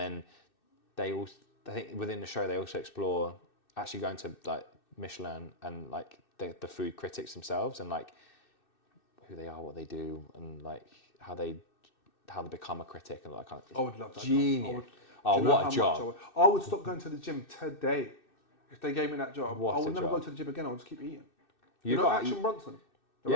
I think within the show they also explore actually going to like Michelin and like the food critics themselves and like who they are, what they do, and like how they become a critic and all that kind of. I would love that. Genius. What a job! I would stop going to the gym today if they gave me that job. What I would a never job. go to the gym again. I would just keep eating. Action Bronson?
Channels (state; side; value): late; right; 2.6 ms